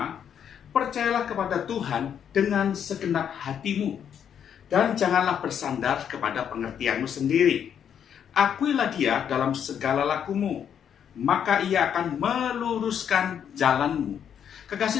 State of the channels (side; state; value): right; quieter; 8.6 dB